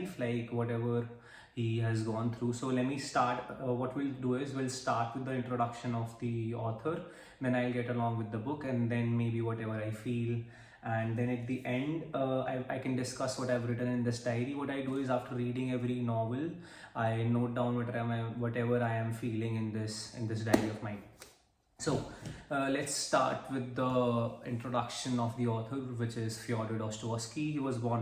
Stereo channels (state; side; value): identical; both; correlation 1.00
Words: like whatever he has gone through. So let me start. What we'll do is we'll start with the introduction of the author, then I'll get along with the book, and then maybe whatever I feel, and then at the end I can discuss what I've written in this diary. What I do is after reading every novel, I note down whatever I am feeling in this diary of mine. So let's start with the introduction of the author, which is Fyodor Dostoevsky. He was